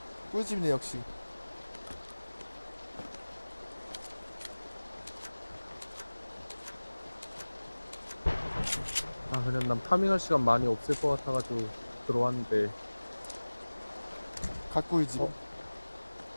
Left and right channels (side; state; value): both; inverted; correlation -1.00